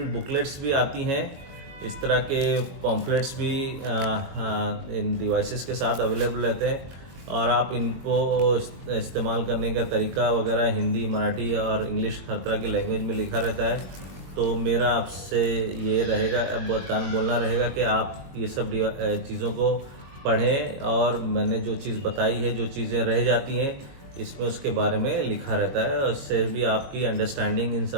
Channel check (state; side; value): late; left; 22 ms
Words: बुकलेट्स भी आती हैं, इस तरह के पॉम्फलेट्स भी इन डिवाइसेस के साथ अवेलेबल रहते हैं, और आप इनको इस्तेमाल करने का तरीका वगैरह हिंदी, मराठी और इंग्लिश हर तरह की लैंग्वेज में लिखा रहता है। तो मेरा आपसे ये रहेगा, बोलना रहेगा कि आप ये सब चीज़ों को पढ़ें, और मैंने जो चीज़ बताई है, जो चीज़ें रह जाती हैं इसमें उसके बारे में लिखा रहता है और इससे भी आपकी अंडरस्टैंडिंग इन